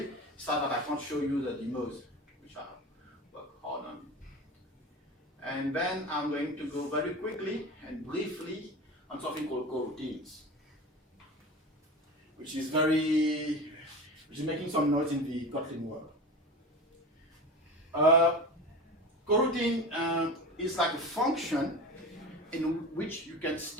sad that I can't show you the demos, which I work hard on. And then I'm going to go very quickly and briefly on something called coroutines, which is making some noise in the Kotlin world. Coroutine is like a function in which you can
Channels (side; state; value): both; normal; correlation 0.31